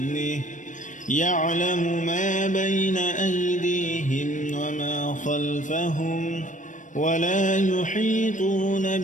يعلم ما بين أيديهم وما خلفهم ولا يحيطون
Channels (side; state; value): right; late; 0.37 ms